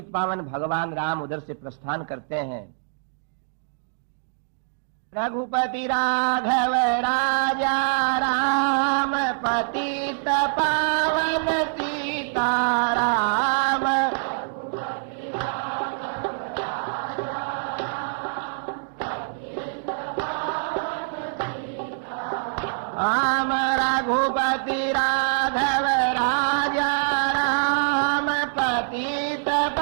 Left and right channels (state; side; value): silent; left; digital silence